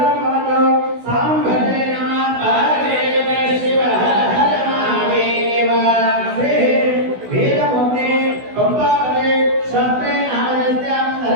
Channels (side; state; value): left; late; 16 ms